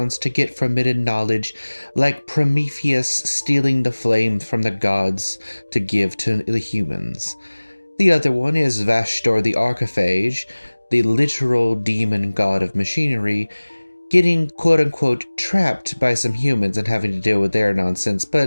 to get forbidden knowledge, like Prometheus stealing the flame from the gods to give to the humans. The other one is Vashtor the Archiphage, the literal demon god of machinery, getting quote-unquote trapped by some humans and having to deal with their nonsense,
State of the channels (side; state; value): both; inverted; correlation -1.00